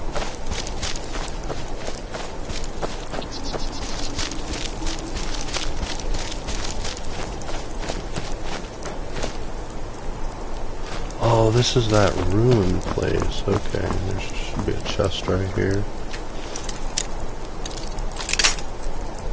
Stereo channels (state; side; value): identical; both; correlation 1.00